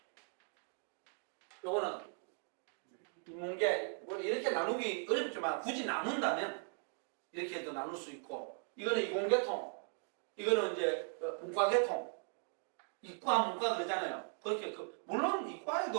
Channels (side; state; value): left; silent; 52 dB below the other